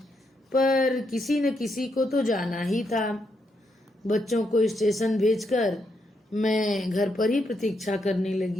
पर किसी न किसी को तो जाना ही था। बच्चों को स्टेशन भेजकर मैं घर पर ही प्रतीक्षा करने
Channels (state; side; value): normal; both; correlation 0.79